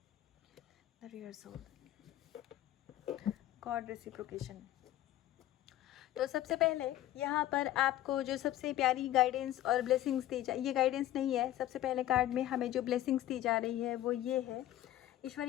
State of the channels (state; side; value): quieter; right; 13.8 dB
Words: the real soul, god reciprocation. तो सबसे पहले यहाँ पर आपको जो सबसे प्यारी गाइडेंस और ब्लेसिंग्स दी जा, ये गाइडेंस नहीं है, सबसे पहले कार्ड में हमें जो ब्लेसिंग्स दी जा रही है वो ये है। ईश्वर